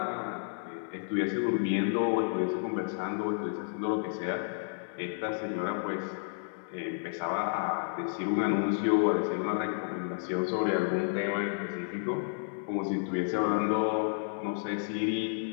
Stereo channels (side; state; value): right; silent; digital silence